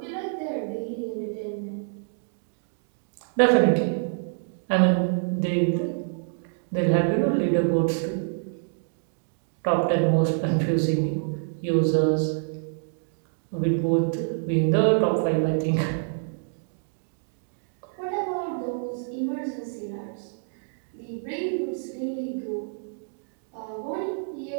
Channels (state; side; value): silent; left; digital silence